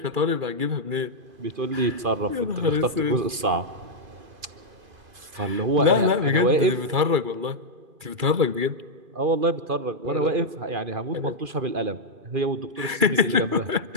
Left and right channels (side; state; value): left; late; 2.5 ms